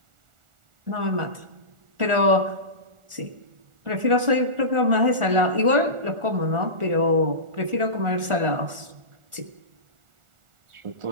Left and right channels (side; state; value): left; late; 1.4 ms